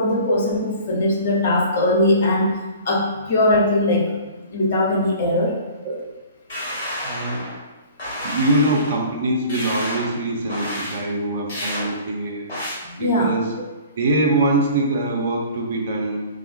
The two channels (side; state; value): both; inverted; correlation -0.46